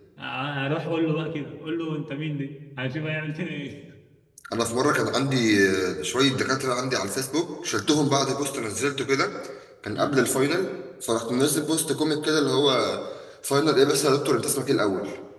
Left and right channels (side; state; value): both; identical; correlation 1.00